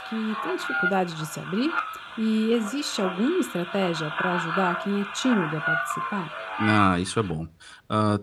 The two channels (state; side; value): identical; both; correlation 1.00